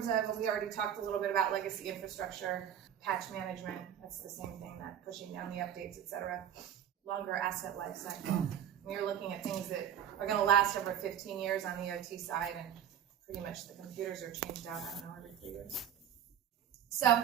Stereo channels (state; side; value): quieter; left; 9.7 dB